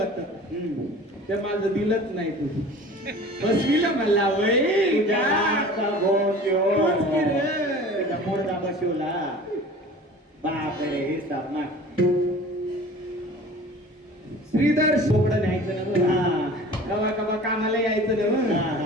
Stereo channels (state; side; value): normal; both; correlation 0.42